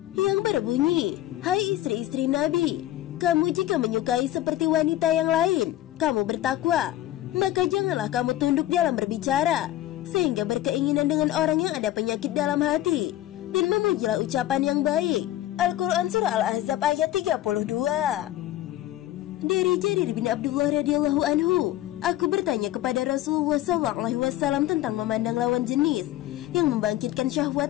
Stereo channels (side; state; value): right; quieter; 14.2 dB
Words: yang berbunyi, hai istri-istri Nabi, kamu jika menyukai seperti wanita yang lain, kamu bertakwa, maka janganlah kamu tunduk dalam berbicara, sehingga berkeinginan dengan orang yang ada penyakit dalam hati, dan memujilah ucapan yang baik. Al-Quran Surah Al-Ahzab ayat 32. Dari Jarir bin Abdullah radhiyallahu anhu, aku bertanya kepada Rasulullah SAW tentang memandang lawan jenis yang membangkitkan